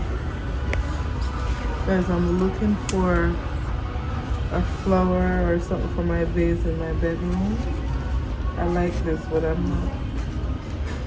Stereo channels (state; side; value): identical; both; correlation 1.00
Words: Guys, I'm looking for a flower or something for my vase in my bedroom. I like this, but